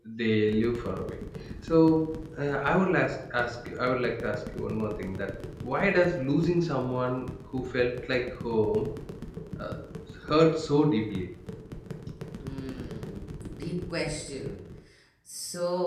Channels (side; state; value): both; identical; correlation 1.00